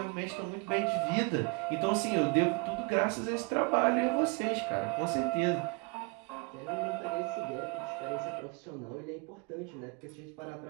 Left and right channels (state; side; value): quieter; left; 32.9 dB